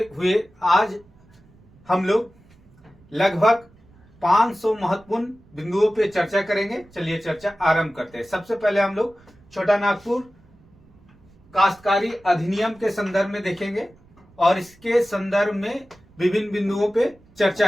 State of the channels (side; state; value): right; noise; rumble, 28 dB below the sound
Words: हुए आज हम लोग लगभग 500 महत्वपूर्ण बिंदुओं पे चर्चा करेंगे। चलिए चर्चा आरंभ करते हैं। सबसे पहले हम लोग छोटा नागपुर काश्तकारी अधिनियम के संदर्भ में देखेंगे और इसके संदर्भ में विभिन्न बिंदुओं पे चर्चा